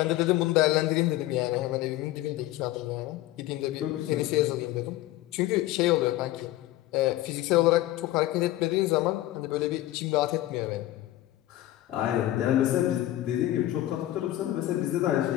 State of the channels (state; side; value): quieter; right; 15.4 dB